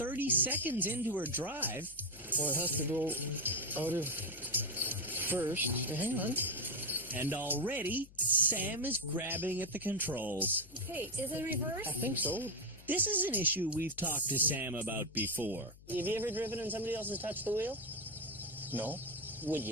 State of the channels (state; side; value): noise; left; hum, 21 dB below the sound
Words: seconds into her drive. Well, it has to go out of first. Hang on. And already, Sam is grabbing at the controls. Okay, is it reverse? I think so. This is an issue we've talked to Sam about before. Have you ever driven and somebody else has touched the wheel? No. Would